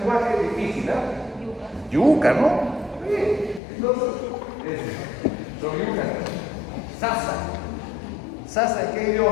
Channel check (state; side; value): drops out; right; at 3.6 s